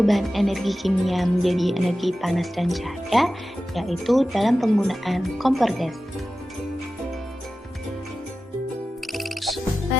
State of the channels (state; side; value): normal; both; correlation 0.94